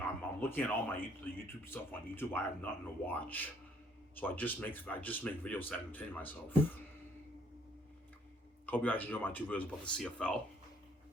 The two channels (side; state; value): both; normal; correlation 0.63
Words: I'm looking at all the YouTube stuff on YouTube. I have nothing to watch, so I just make videos to entertain myself. Hope you guys enjoy my two videos about the CFL,